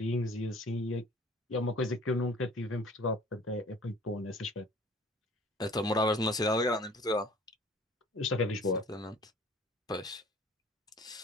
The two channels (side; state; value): both; normal; correlation 0.50